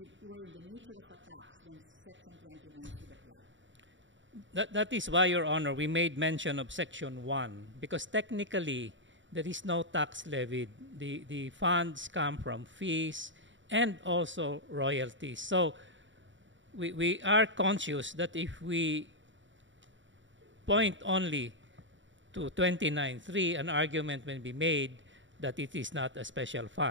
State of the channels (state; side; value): late; left; 0.55 ms